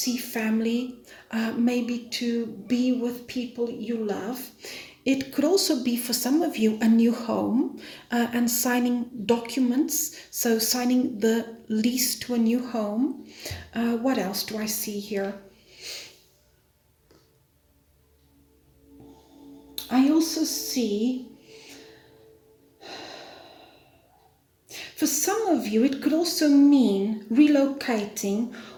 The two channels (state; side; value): identical; both; correlation 1.00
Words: family, maybe to be with people you love. It could also be for some of you a new home and signing documents, so signing the lease to a new home. What else do I see here? I also see, for some of you, it could also mean relocating